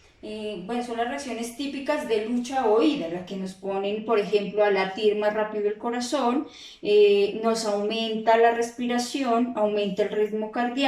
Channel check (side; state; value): both; identical; correlation 1.00